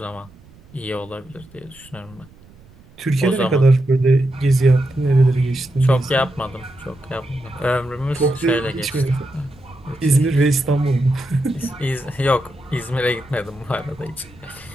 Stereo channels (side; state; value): right; noise; rumble, 25 dB below the sound